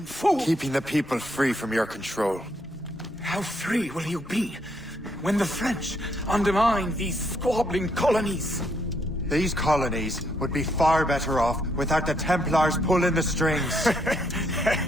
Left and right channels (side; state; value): both; normal; correlation 0.73